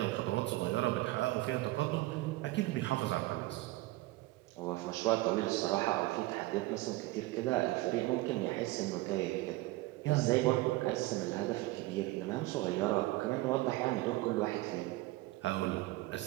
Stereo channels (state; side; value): quieter; left; 19.2 dB